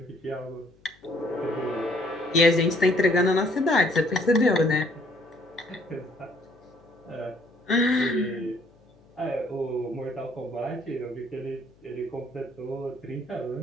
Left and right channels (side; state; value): left; noise; hum, 30 dB below the sound